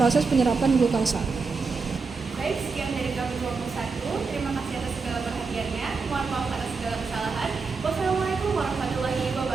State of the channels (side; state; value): left; quieter; 4.6 dB